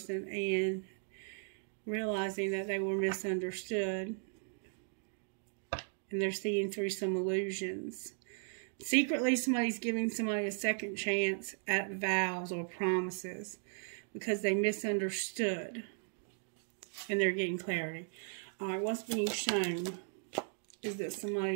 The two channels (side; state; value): left; silent; 53 dB below the other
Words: and realizing that they were misunderstood. And they're seeing through some illusions. Secretly, somebody's giving somebody a second chance at vows or promises because they misunderstood. And they're getting clarity. All right, what's being shown is that